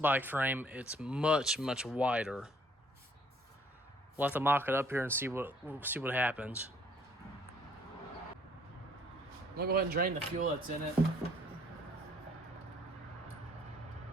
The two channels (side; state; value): both; normal; correlation 0.62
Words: frame, it's much wider. We'll have to mock it up here and see what happens. I'm gonna go ahead and drain the fuel that's in it.